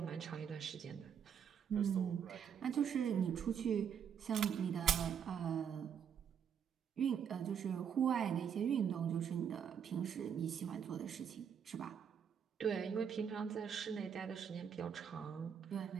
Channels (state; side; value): quieter; left; 7.9 dB